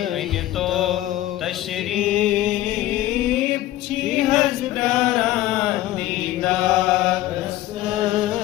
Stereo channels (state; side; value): quieter; right; 15.1 dB